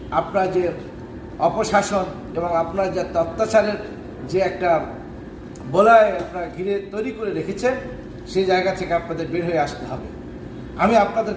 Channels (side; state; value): both; identical; correlation 1.00